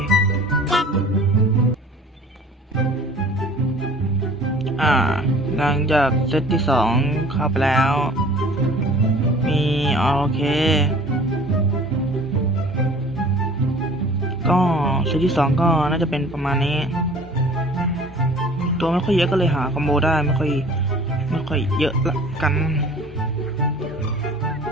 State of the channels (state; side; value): normal; both; correlation 0.48